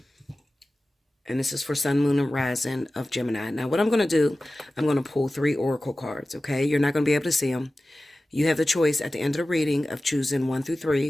And this is for Sun, Moon, and Rising of Gemini. Now, what I'm going to do, I'm going to pull 3 oracle cards, okay? You're not going to be able to see them. You have the choice at the end of the reading of choosing 1 through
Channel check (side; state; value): both; normal; correlation 0.96